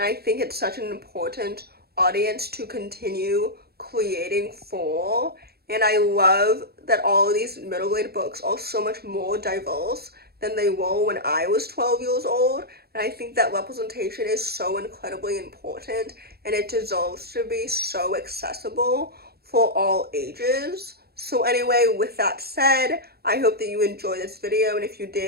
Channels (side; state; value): left; late; 0.46 ms